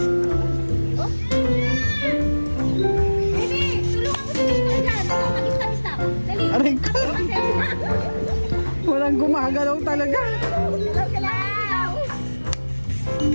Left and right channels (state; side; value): inverted; both; correlation -1.00